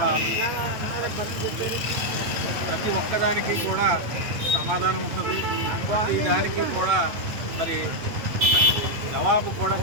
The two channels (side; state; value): left; late; 8.7 ms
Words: ప్రతి ఒక్కదానికి కూడా సమాధానం ఉంటుంది. ప్రతి దానికి కూడా మరి జవాబు కూడా